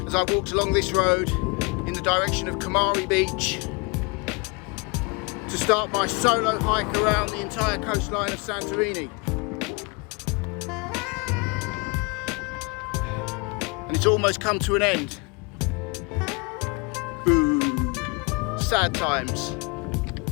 as I walked along this road in the direction of Kamari Beach to start my solo hike around the entire coastline of Santorini. And it's almost come to an end. Boo. Sad times.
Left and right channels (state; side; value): quieter; right; 30.1 dB